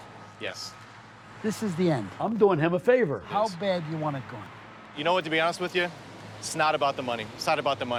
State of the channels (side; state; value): both; identical; correlation 1.00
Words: Yes. This is the end. I'm doing him a favor. How bad do you want it gone? You know what, to be honest with you, it's not about the money. It's not about the